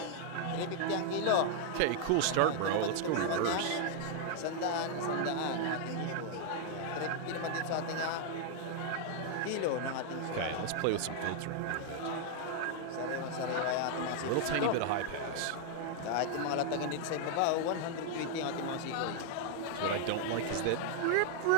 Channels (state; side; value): different; both; correlation 0.00